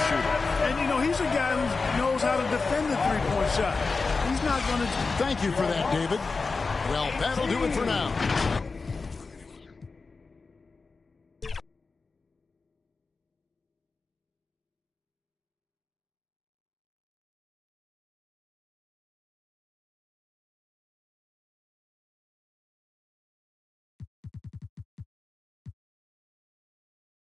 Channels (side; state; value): right; quieter; 4.2 dB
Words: shooter. And, you know, he's a guy who knows how to defend the three-point shot. He's not going to... Thank you for that, David. Well, that'll do it for now.